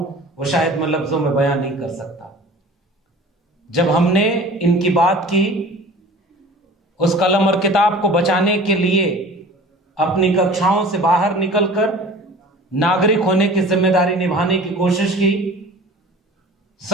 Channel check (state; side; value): normal; both; correlation 0.42